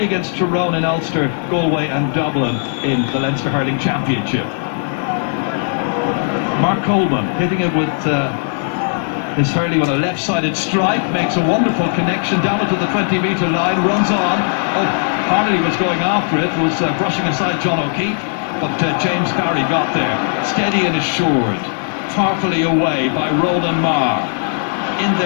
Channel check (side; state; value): right; silent; 60 dB below the other